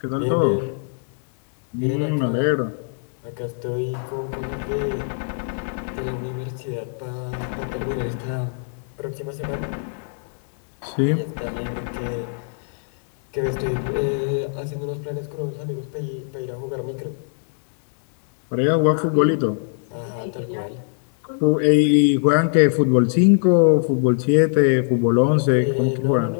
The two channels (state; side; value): silent; right; digital silence